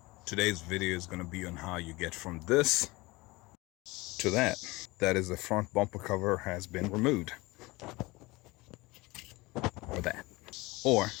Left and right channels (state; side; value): quieter; right; 22.4 dB